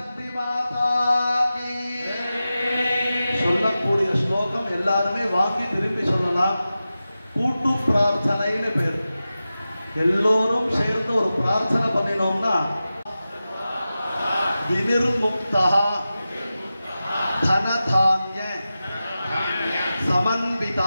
की சொல்லக்கூடிய ஸ்லோகம் எல்லாருமே வாங்கி திரும்பி சொல்லலாம். கூட்டு பிரார்த்தனைன்னு பேர். எல்லோரும் சேர்ந்து ஒரு பிரார்த்தனை பண்ணினோம்னா வினிர்முக்தா தனதான்ய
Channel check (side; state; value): both; inverted; correlation -0.94